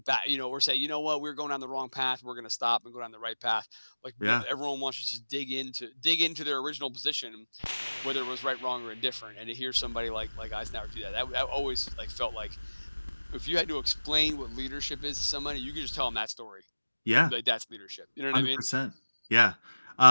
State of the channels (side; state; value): both; inverted; correlation -1.00